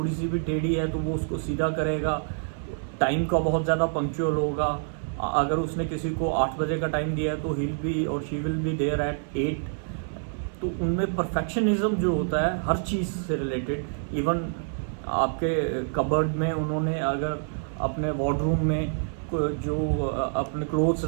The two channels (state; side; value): silent; left; 55 dB below the other